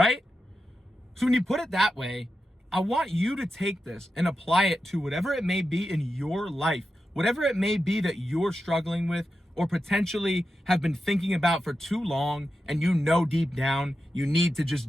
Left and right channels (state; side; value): normal; both; correlation 0.90